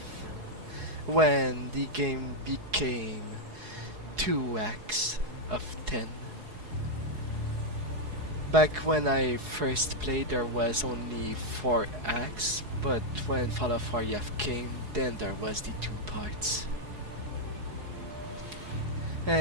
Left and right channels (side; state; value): left; late; 4.8 ms